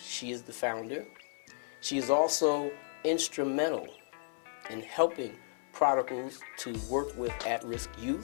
she is the founder. She is also instrumental in helping prodigals to work with at-risk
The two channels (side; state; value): right; silent; 55 dB below the other